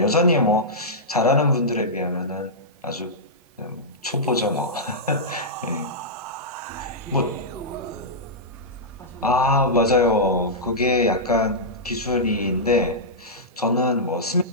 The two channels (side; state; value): both; normal; correlation -0.11